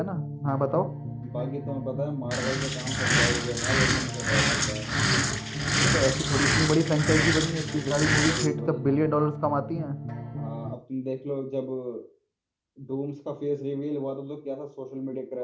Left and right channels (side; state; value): both; identical; correlation 1.00